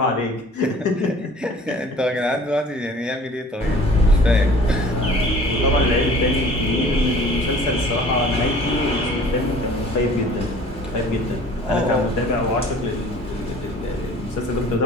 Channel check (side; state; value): both; normal; correlation 0.49